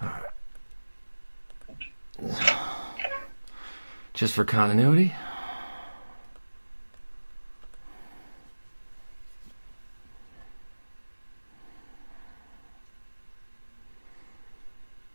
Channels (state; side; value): inverted; both; correlation -1.00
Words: Alright. Just for continuity.